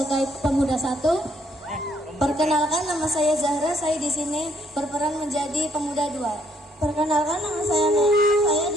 pemuda satu. Perkenalkan, nama saya Zahra, saya di sini berperan menjadi pemuda dua. Perkenalkan, nama saya Nena, saya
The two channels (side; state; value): both; normal; correlation 0.68